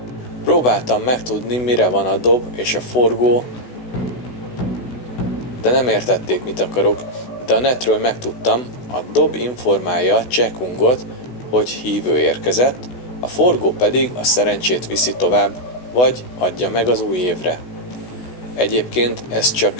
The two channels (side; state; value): right; late; 16 ms